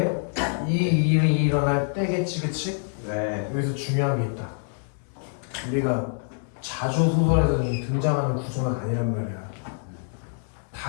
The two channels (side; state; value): right; silent; 61 dB below the other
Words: 이 일이 일어날 때겠지, 그치? 네. 여기서 중요한 게 있다. 우리가 자주 소설에서 등장하는 구조가 아니란 말이야.